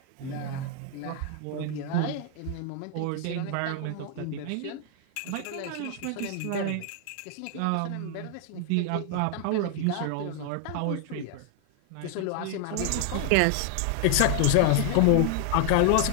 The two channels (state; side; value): different; both; correlation 0.00